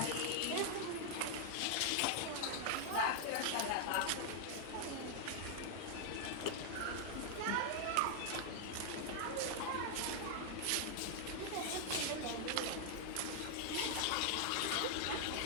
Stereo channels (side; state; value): both; different; correlation 0.00